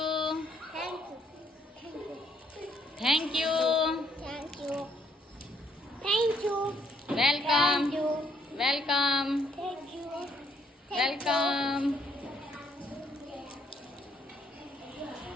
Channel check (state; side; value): normal; both; correlation 0.69